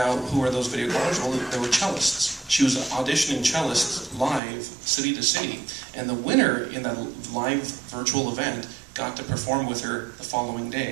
who are those video callers? Well, they were cellists. She was auditioning cellists live, city to city, and the winner in that live virtual event got to perform with her the following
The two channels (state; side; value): drops out; left; at 4.4 s